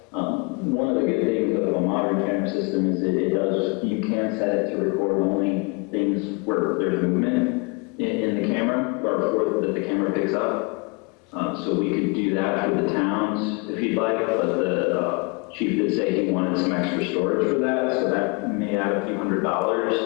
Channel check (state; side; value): quieter; right; 30.6 dB